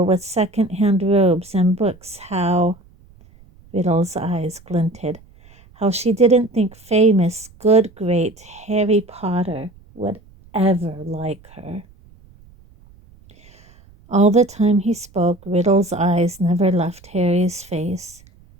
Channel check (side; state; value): right; noise; rumble, 26 dB below the sound